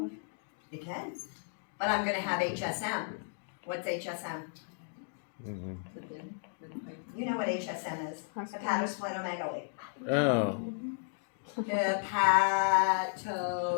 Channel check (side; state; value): right; silent; digital silence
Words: It can. But I'm going to have HSM. What's HSM? Mm-hmm. You know what HSM is? Hepatosplenomegaly. Oh.